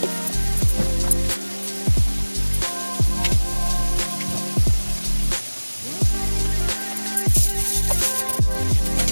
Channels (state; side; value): inverted; both; correlation -1.00